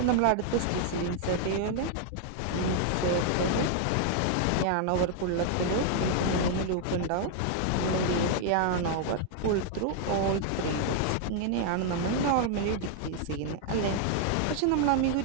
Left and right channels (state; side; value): different; both; correlation 0.00